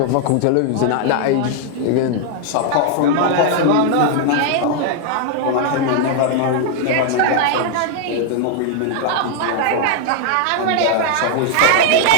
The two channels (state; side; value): different; both; correlation 0.00